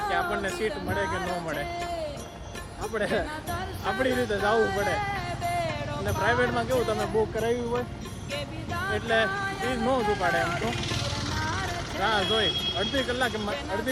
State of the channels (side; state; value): both; identical; correlation 1.00